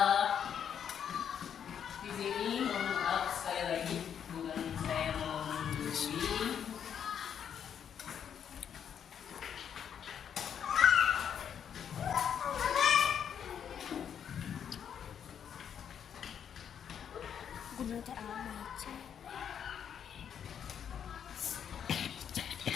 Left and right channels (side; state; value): right; quieter; 8.4 dB